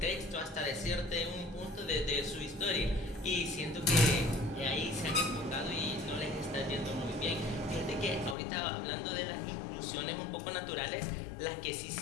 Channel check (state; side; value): drops out; right; at 8.3 s